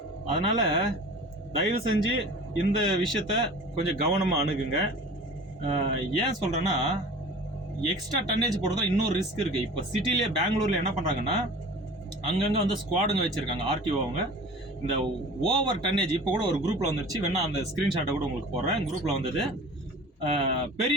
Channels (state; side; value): normal; both; correlation 0.41